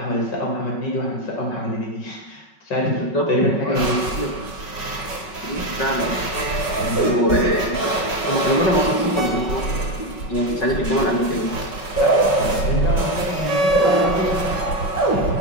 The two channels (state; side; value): late; right; 5.3 ms